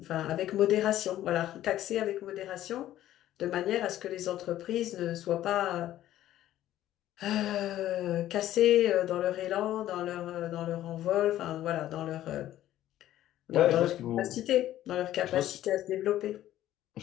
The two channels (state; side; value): quieter; right; 13.2 dB